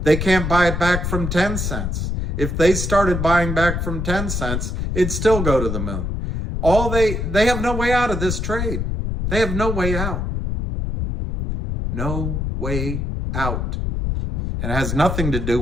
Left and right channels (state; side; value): noise; left; rumble, 2 dB below the sound